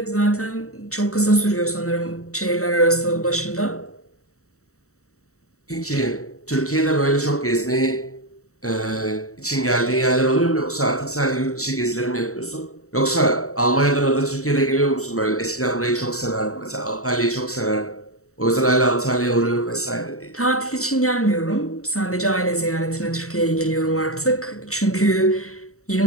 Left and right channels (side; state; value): right; late; 0.64 ms